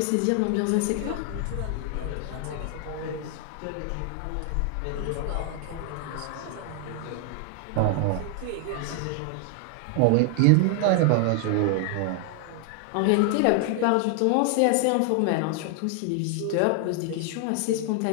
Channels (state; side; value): different; both; correlation 0.00